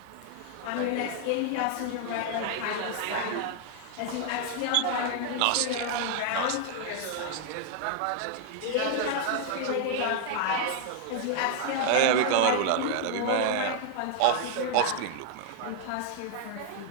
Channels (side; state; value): both; different; correlation 0.00